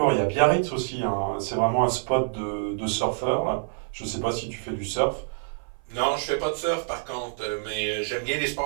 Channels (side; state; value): left; silent; 56 dB below the other